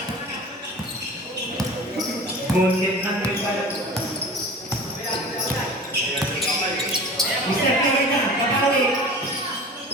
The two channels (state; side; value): normal; both; correlation 0.38